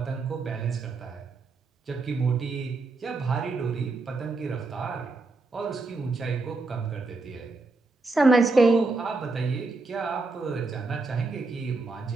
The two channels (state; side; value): quieter; left; 3.6 dB